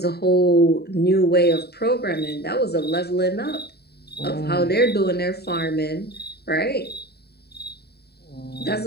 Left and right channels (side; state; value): right; late; 0.47 ms